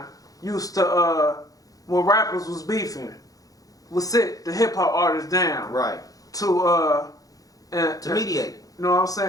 used to, when rappers was beefing, would sit the hip hop artists down. Right. To mediate. You know what I'm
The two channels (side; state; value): right; late; 0.17 ms